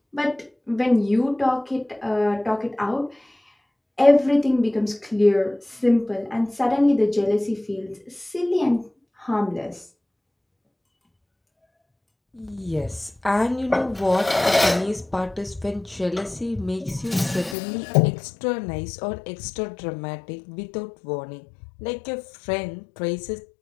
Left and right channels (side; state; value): right; drops out; at 17.6 s